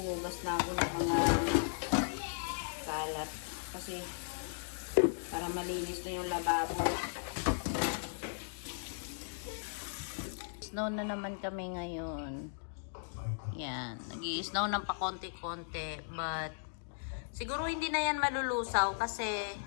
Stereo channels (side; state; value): right; silent; digital silence